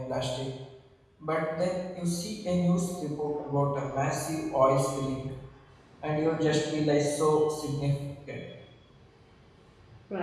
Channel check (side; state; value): both; identical; correlation 1.00